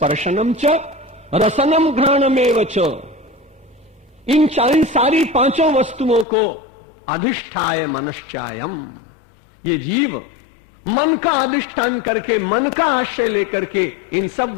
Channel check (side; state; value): right; drops out; at 6.2 s